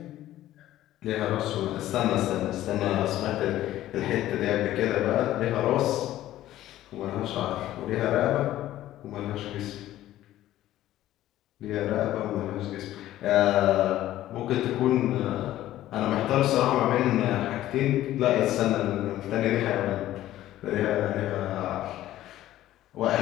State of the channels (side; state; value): right; quieter; 14.0 dB